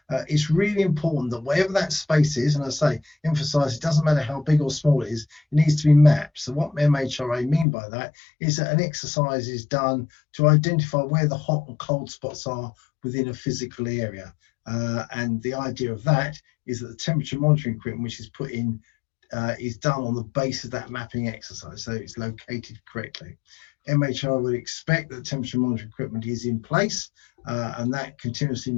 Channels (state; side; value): drops out; right; at 7.7 s